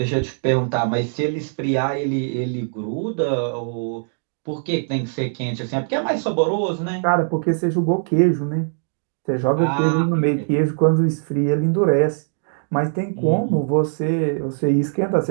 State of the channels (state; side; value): silent; left; digital silence